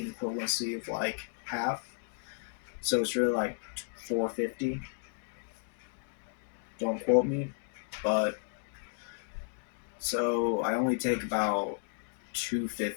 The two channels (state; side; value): silent; right; digital silence